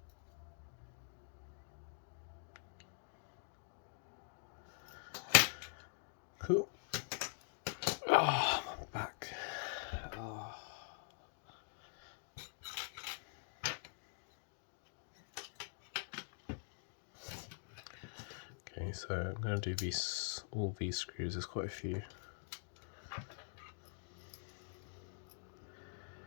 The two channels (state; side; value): silent; right; digital silence